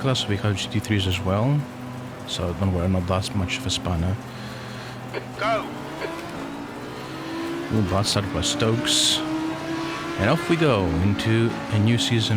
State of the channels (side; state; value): both; identical; correlation 1.00